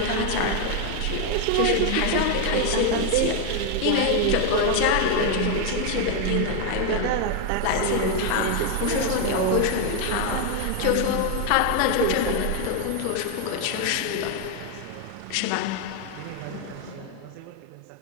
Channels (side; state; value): both; different; correlation 0.01